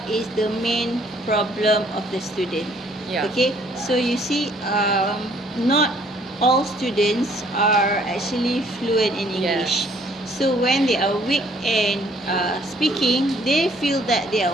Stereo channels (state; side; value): normal; both; correlation 0.62